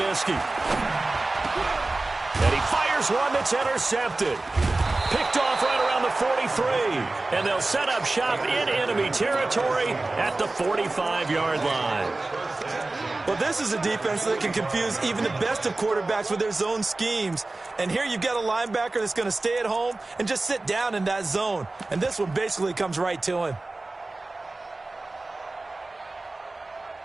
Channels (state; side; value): quieter; left; 3.1 dB